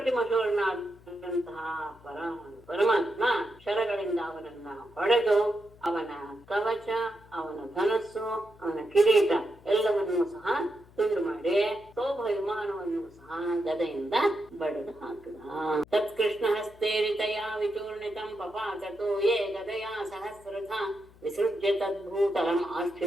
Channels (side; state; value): left; noise; hum, 25 dB below the sound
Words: ಶೂರನಾದಂತಹ ಪರಮಾತ್ಮ ಶರಗಳಿಂದ ಅವನನ್ನ ಹೊಡೆದು ಅವನ ಕವಚ, ಅವನ ಧನಸ್ಸು, ಅವನ ಕಿರೀಟ ಎಲ್ಲವನ್ನೂ ಸಹ ತುಂಡು ಮಾಡಿ ಸೌಭ ವಿಮಾನವನ್ನು ಸಹ ಗದೆಯಿಂದ ಬಡಿದು ಹಾಕಿದ. ತತ್ಕೃಷ್ಣ ಹಸ್ತೇರಿತಯಾ ವಿಚೂರ್ಣಿತಂ ಪಪಾತೋ ಯೇ ಗದಯಾ ಸಹಸ್ರಧ ವಿಸೃಜ್ಯ ತದ್ಭೂತಲಂ